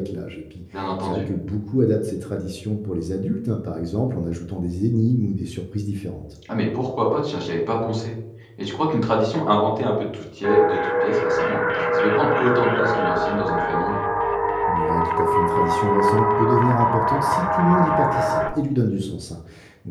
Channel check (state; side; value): identical; both; correlation 1.00